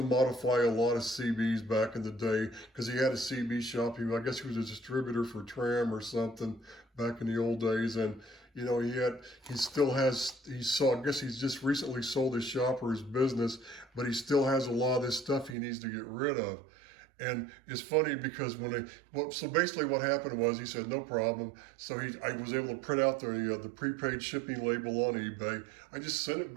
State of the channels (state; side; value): drops out; left; at 15.6 s